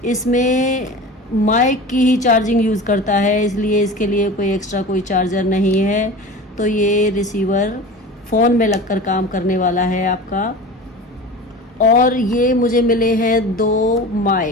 इसमें माइक की ही चार्जिंग यूज़ करता है, इसलिए इसके लिए कोई एक्स्ट्रा कोई चार्जर नहीं है। तो ये रिसीवर फ़ोन में लगकर काम करने वाला है आपका। और ये मुझे मिले हैं 2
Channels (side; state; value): both; normal; correlation 0.34